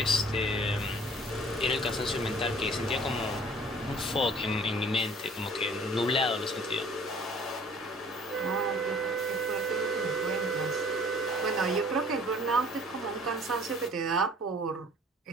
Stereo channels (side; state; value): both; normal; correlation 0.53